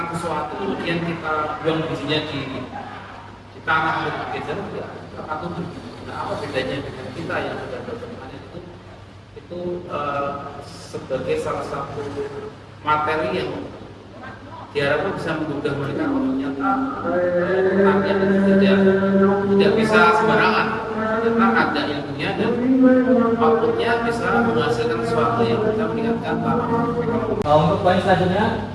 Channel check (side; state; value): both; identical; correlation 1.00